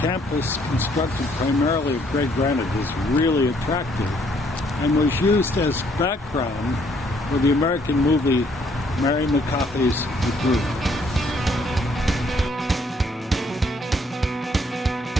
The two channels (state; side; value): normal; both; correlation 0.67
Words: constructed primarily of gray granite, is really attractive and was used as background for the American movie Mary McCarthy's The Group.